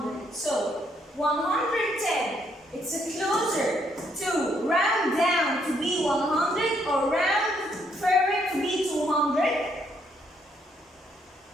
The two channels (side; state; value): both; normal; correlation 0.72